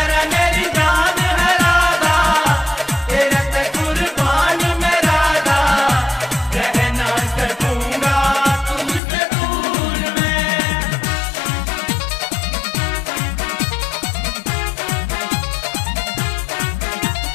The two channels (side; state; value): right; drops out; at 9.0 s